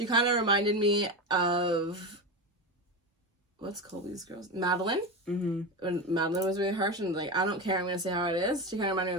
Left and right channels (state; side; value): normal; both; correlation 0.20